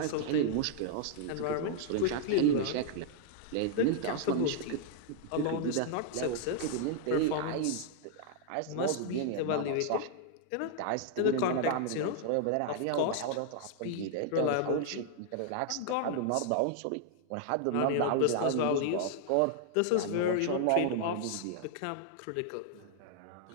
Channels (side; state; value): both; different; correlation 0.00